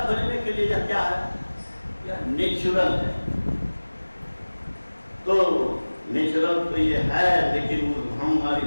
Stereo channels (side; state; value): both; inverted; correlation -1.00